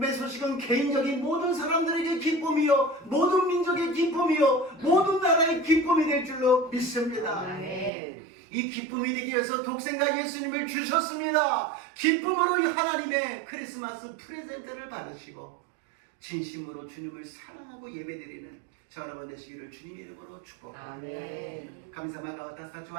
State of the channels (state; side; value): drops out; left; at 7.9 s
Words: 소식은 개인적인 모든 사람들에게 기쁨이요, 모든 민족의 기쁨이요, 모든 나라의 기쁨이 될 줄로 믿습니다. 이 기쁨이 되기 위해서 독생자 예수님을 주셨습니다. 기쁨으로 하나님의 크리스마스 프레젠트를 받으시고 진심으로 주님을 사랑하고 예배드리는 저 여러분 되시기를 주님의 이름으로 축복합니다. 神様が私たちを